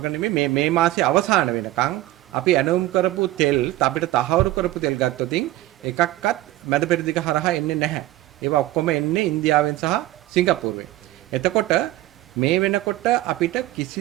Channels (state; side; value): quieter; left; 16.2 dB